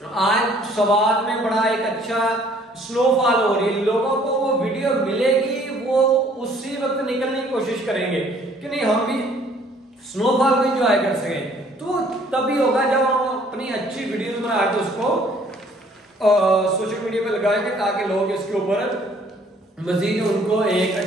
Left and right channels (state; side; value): normal; both; correlation 0.59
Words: सवाद में बड़ा एक अच्छा स्नोफॉल हो रही है, लोगों को वो वीडियो मिलेगी, वो उसी वक्त निकलने की कोशिश करेंगे कि नहीं हम भी स्नोफॉल को एंजॉय कर सकें। तो तभी होगा जब हम अपनी अच्छी वीडियोस बना के उसको सोशल मीडिया पे लगाएंगे ताकि लोग इसके ऊपर मजीद उनको एक